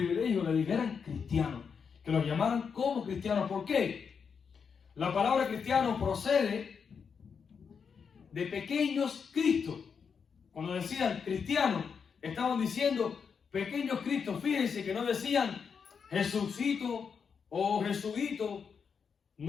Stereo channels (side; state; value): right; quieter; 6.3 dB